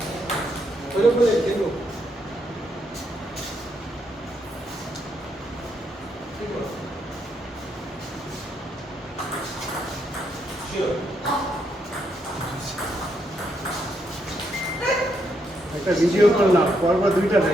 ওইরকম বলে দেখবো। একটা ভিডিও করলাম, পরপর 2টা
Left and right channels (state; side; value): normal; both; correlation 0.78